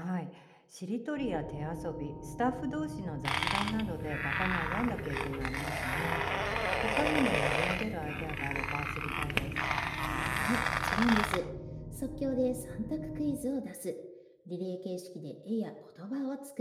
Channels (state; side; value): identical; both; correlation 1.00